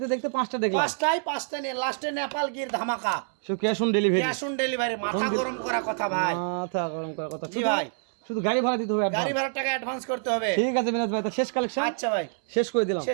দেখতে পাঁচটা দেখলাম পাঁচটা নিয়ে লাস্টে নেপাল গির ধামাকা। So cash on delivery cash on delivery, মাথা গরম করা কথা ভাই। মাথা গরম করার কথা জি ভাই। শুধু গাড়ি ভাড়া দিতে হবে গাড়ি অ্যাডভান্স ভাড়ার টাকা অ্যাডভান্স করতে হবে। ঠিক আছে মিনাজ ভাই তো শেষ কালেকশন আচ্ছা ভাই, শেষ করে দিলাম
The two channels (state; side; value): silent; left; 60 dB below the other